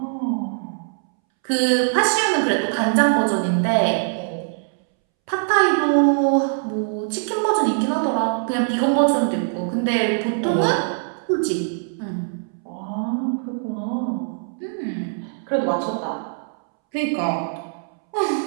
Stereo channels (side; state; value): left; silent; 64 dB below the other